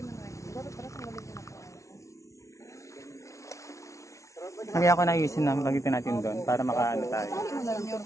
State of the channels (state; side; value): late; right; 0.14 ms